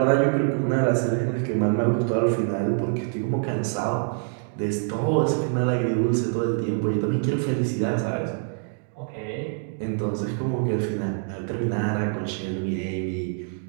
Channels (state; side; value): silent; left; 62 dB below the other